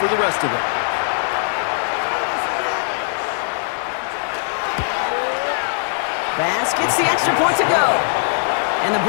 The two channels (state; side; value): silent; right; 56 dB below the other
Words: for the rest of it. Bass gets the extra point to go. And the